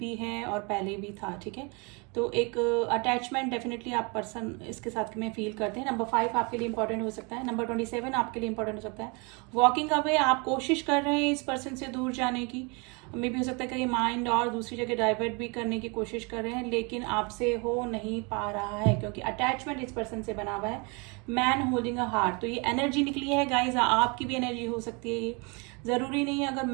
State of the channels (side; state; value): left; quieter; 30.9 dB